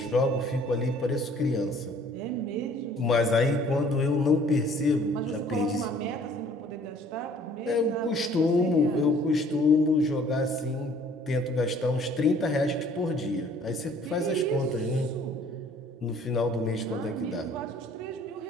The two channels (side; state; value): both; normal; correlation 0.56